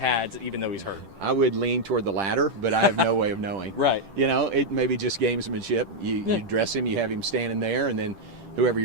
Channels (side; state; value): left; late; 10 ms